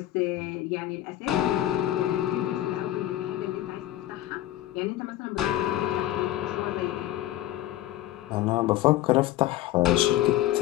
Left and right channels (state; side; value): quieter; right; 14.1 dB